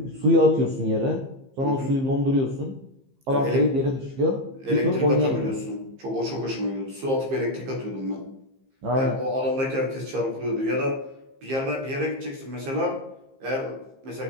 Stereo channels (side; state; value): left; late; 15 ms